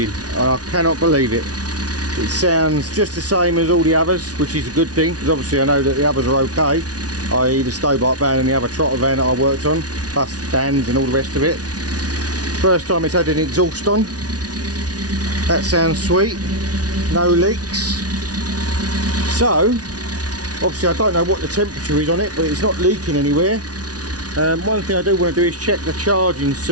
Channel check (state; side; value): late; left; 0.68 ms